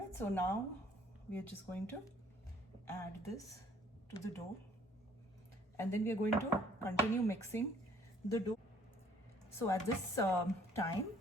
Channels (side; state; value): both; normal; correlation 0.59